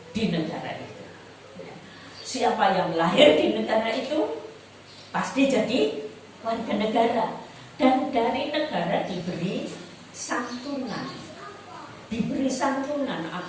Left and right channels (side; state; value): both; identical; correlation 1.00